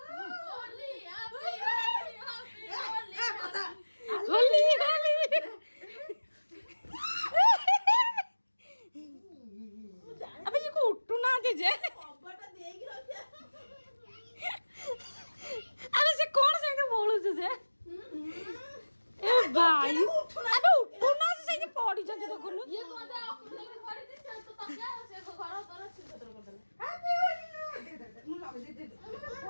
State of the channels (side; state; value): both; inverted; correlation -1.00